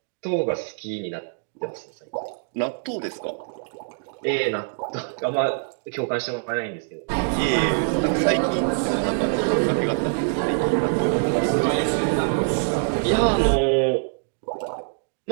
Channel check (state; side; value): silent; left; digital silence